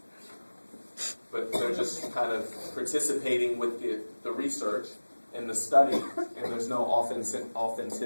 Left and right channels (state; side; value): inverted; both; correlation -1.00